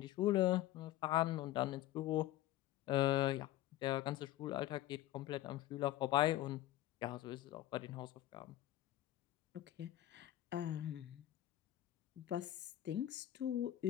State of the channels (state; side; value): quieter; right; 14.4 dB